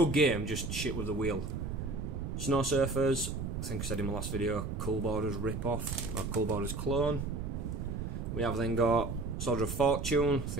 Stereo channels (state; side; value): noise; right; rumble, 4 dB below the sound